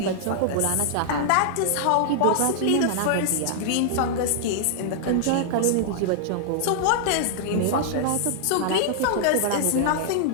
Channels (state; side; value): different; both; correlation -0.01